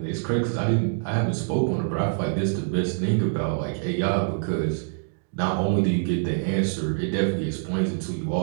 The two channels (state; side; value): silent; left; digital silence